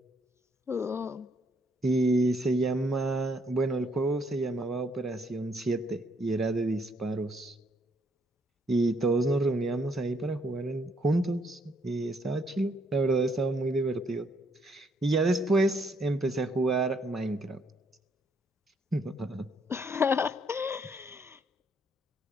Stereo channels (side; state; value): both; normal; correlation 0.70